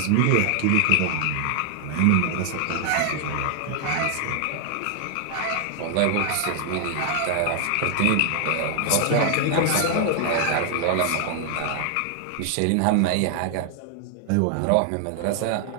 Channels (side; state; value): both; different; correlation 0.00